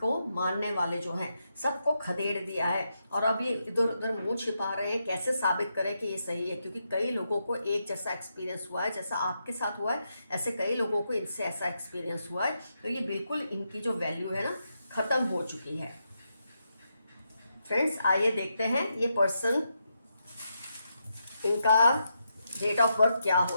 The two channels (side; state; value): both; inverted; correlation -0.83